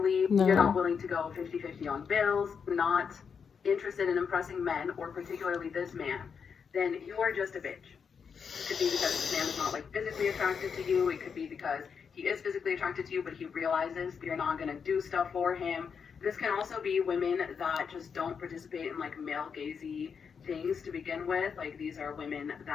you're not willing to go 50-50 on bills, not interested in impressing men, or particularly this man, then you are just a bitch. It could be because this man is not like physically attracted to you. It could be because he is physically attracted to you, but he realizes you're not going to do stuff for him. This can also be women that just don't participate in like male gazy things to begin with. Like these are women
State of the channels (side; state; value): right; quieter; 6.4 dB